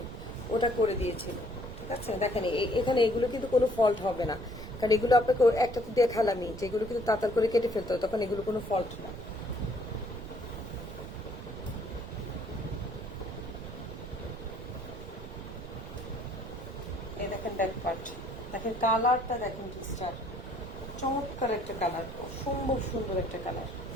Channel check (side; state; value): right; noise; rumble, 11 dB below the sound